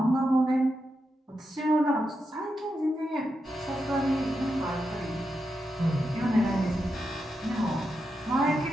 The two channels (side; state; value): both; normal; correlation 0.86